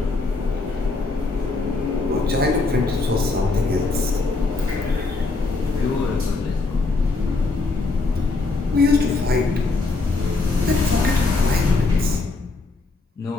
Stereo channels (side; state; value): right; quieter; 3.6 dB